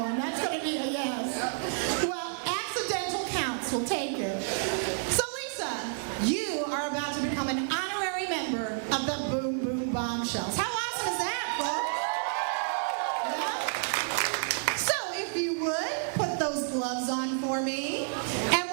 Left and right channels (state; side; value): silent; left; digital silence